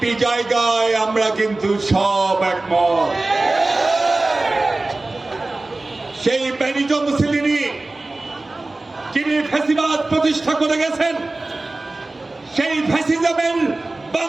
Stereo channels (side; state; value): left; quieter; 3.0 dB